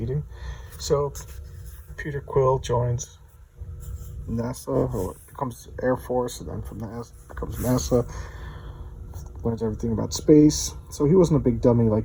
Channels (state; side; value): identical; both; correlation 1.00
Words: So, Peter Quill joins NASA, or becomes Air Force, and then from NASA becomes NASA. Learns everything about space. So he wasn't a big dummy